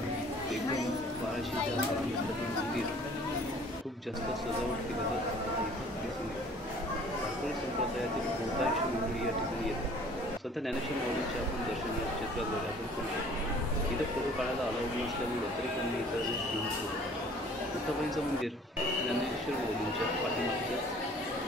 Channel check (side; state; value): both; normal; correlation 0.52